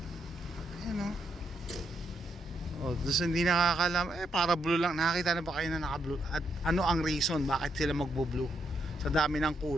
Ayan doon hindi nakakalam, para blue lang. Nakakita na ba kayo na naka blue? At ano ang reason bakit sila magbo-blue? Sa dami ng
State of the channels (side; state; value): both; normal; correlation 0.79